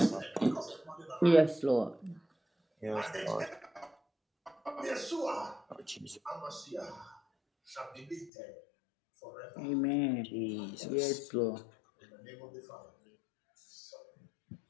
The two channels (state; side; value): drops out; right; at 8.3 s